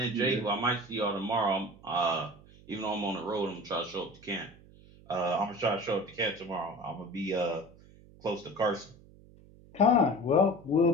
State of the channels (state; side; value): noise; right; hum, 23 dB below the sound